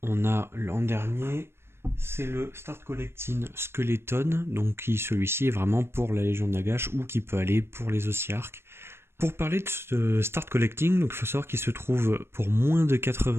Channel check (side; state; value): left; late; 0.12 ms